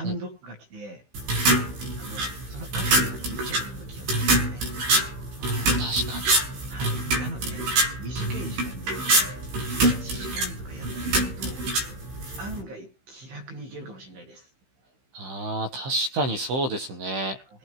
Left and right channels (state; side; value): late; left; 15 ms